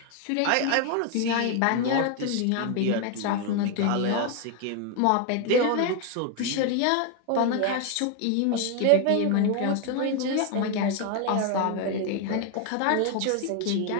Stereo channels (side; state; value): both; different; correlation 0.01